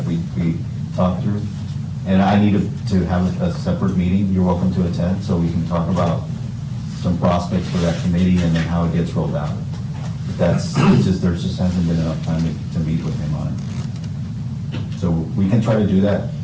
we talked through. And I need to have a separate meeting. You're welcome to attend, so we can talk about some prospects for that committee and then how it gets rolled out. That's, it's just, there just hasn't been enough time to meet with him on it. So we can try to do that.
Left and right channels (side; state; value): both; identical; correlation 1.00